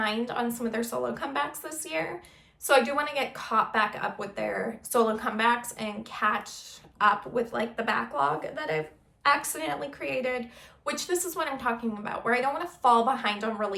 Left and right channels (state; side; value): identical; both; correlation 1.00